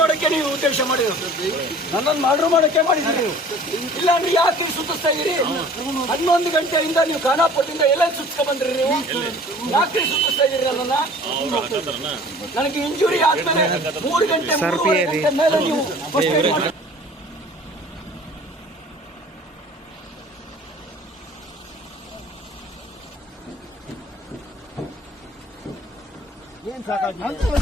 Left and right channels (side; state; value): both; normal; correlation 0.48